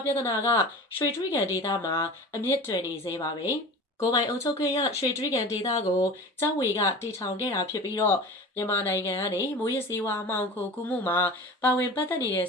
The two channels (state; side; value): normal; both; correlation 0.36